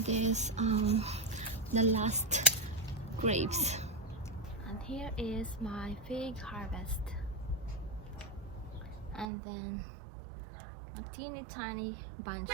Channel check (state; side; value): drops out; left; at 9.2 s